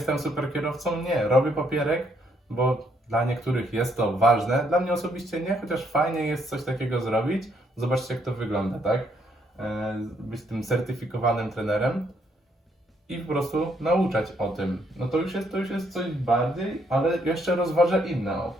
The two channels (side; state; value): both; normal; correlation 0.71